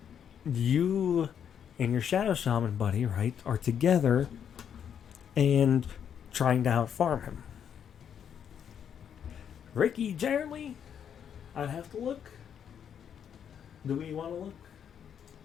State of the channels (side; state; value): right; quieter; 8.4 dB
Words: you and your Shadow Shaman buddy, right, are together and trying to out-farm him. Ricky, generally, I'd have to look. Do we want to look?